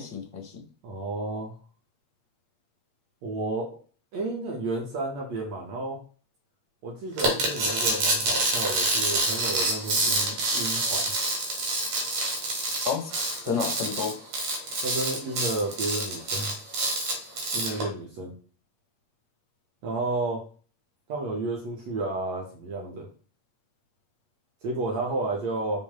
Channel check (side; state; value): left; late; 8.6 ms